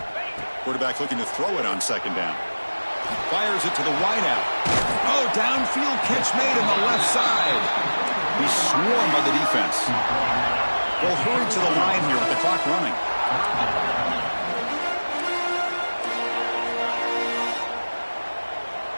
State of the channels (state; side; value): inverted; both; correlation -1.00